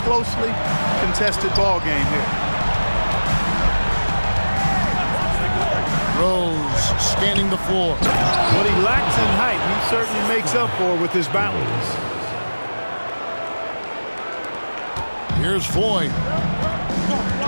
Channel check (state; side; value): inverted; both; correlation -1.00